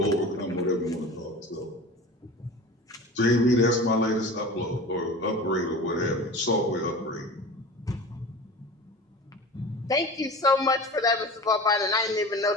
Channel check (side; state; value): both; normal; correlation 0.35